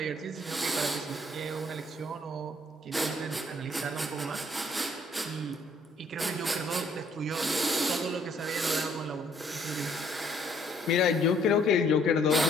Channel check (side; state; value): both; normal; correlation 0.64